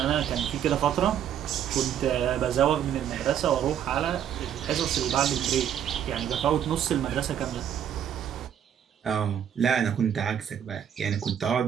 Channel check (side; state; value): left; quieter; 9.4 dB